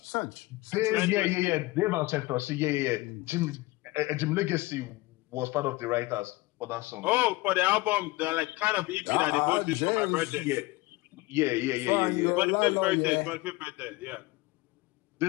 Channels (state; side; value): quieter; right; 21.0 dB